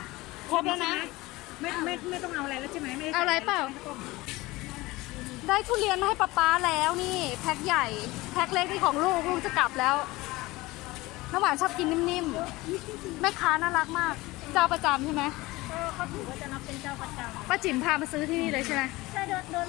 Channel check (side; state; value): right; quieter; 20.5 dB